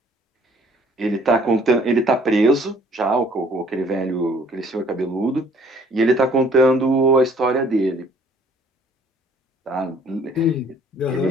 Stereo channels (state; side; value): normal; both; correlation 0.57